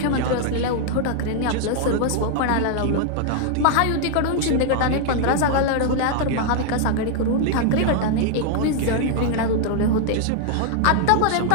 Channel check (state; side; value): different; both; correlation 0.00